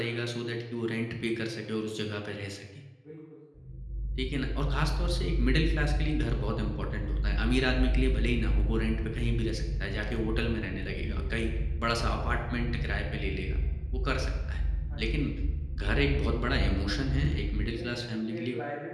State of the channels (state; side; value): identical; both; correlation 1.00